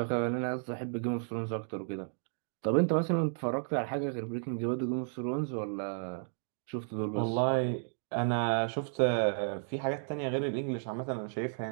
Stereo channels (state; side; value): silent; left; digital silence